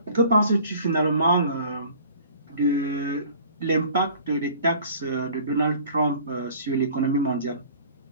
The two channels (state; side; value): inverted; both; correlation -0.48